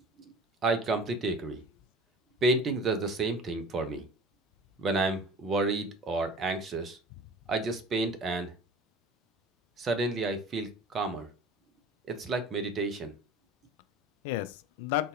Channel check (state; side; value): normal; both; correlation 0.41